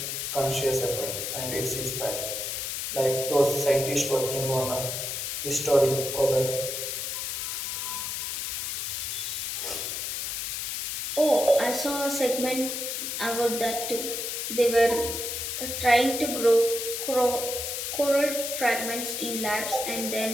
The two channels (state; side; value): noise; left; hiss, 3 dB below the sound